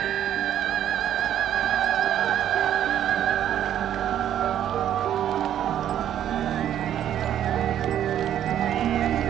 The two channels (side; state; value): left; quieter; 10.7 dB